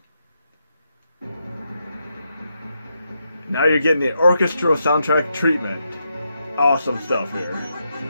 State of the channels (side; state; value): both; inverted; correlation -0.82